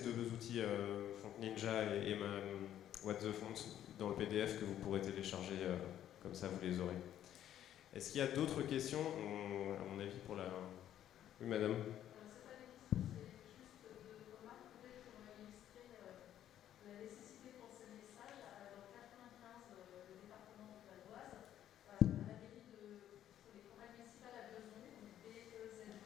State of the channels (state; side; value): quieter; right; 11.3 dB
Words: deux outils, Font Ninja et What the Font, dans le PDF que vous pourrez télécharger, comme ça vous les aurez. Est-ce qu'il y a d'autres questions, à mon avis, pour la... Oui, madame.